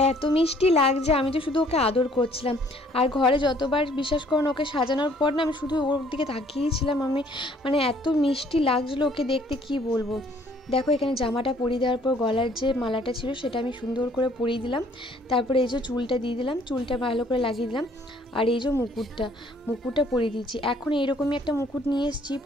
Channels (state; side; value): normal; both; correlation 0.60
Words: এত মিষ্টি লাগছে, আমি তো শুধু ওকে আদর করছিলাম। আর ঘরে যতবার বিশ্বাস করুন ওকে সাজানোর পর না আমি শুধু ওর দিকে তাকিয়েছিলাম, আমি মানে এত মিষ্টি লাগছিলো ওকে দেখতে, কি বলবো। দেখো এখানে জামাটা পরিয়ে দেওয়ার পর গলার যে মালাটা ছিল সেটা আমি সুন্দর করে পরিয়ে দিলাম। তারপরে এই যে চুলটা দিয়ে দিলাম, চুলটা ভালো করে লাগিয়ে দিলাম। আর এই যে মুকুটটা পরিয়ে দিচ্ছি। এখন এইরকমই একটা মুকুট নিয়ে এসেছি,